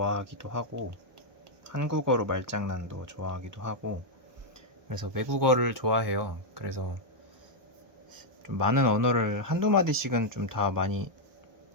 하고, 한국어로 말장난도 좋아하기도 하고, 그래서 외국어를 좋아해요. 그래서 좀 많은 언어를 한두 마디씩은 좀 다 많이,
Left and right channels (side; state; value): left; late; 1.2 ms